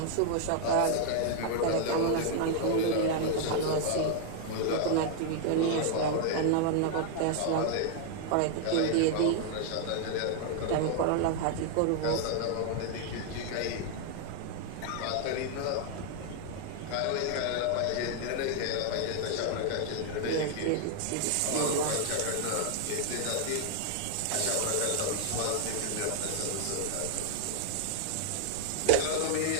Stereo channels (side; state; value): both; different; correlation -0.01